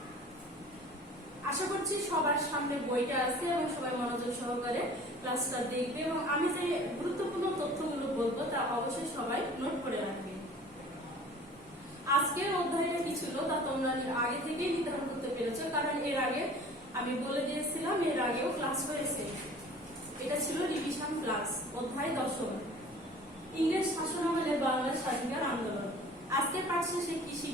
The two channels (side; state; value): both; normal; correlation 0.46